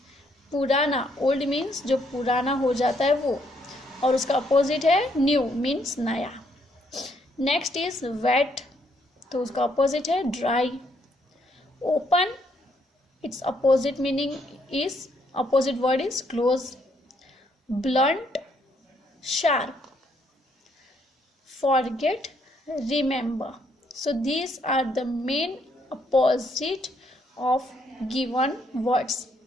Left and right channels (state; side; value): normal; both; correlation 0.71